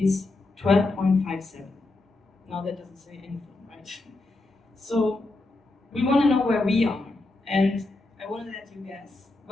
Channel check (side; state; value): right; quieter; 3.0 dB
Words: 12.57. Now that doesn't say anything, right? So we want to know where we are, and I want to let you guess.